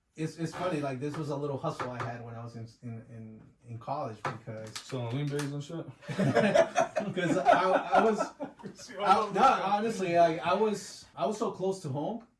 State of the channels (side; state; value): both; identical; correlation 1.00